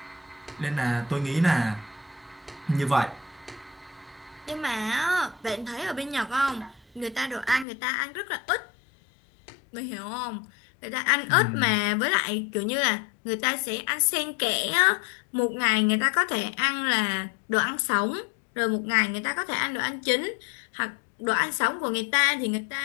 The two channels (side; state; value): right; drops out; at 7.7 s